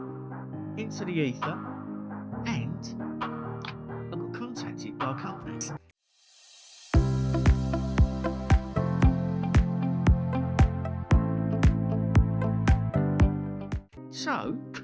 into the ether, and I got contacted by a company. So,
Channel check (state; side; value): identical; both; correlation 1.00